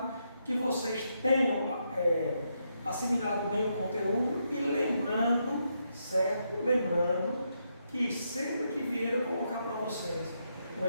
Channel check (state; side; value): inverted; both; correlation -0.80